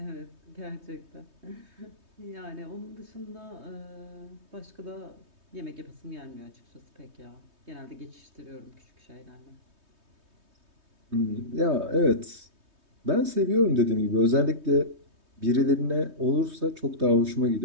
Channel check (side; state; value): left; late; 3.2 ms